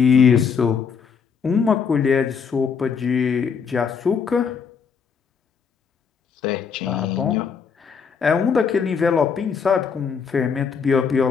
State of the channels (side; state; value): right; quieter; 6.2 dB